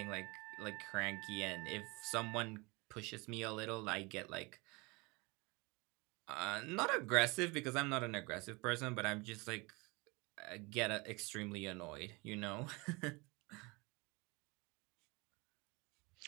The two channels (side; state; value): left; quieter; 26.4 dB